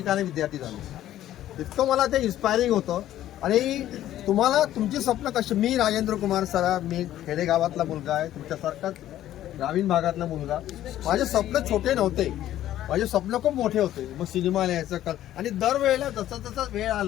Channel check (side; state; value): right; quieter; 12.8 dB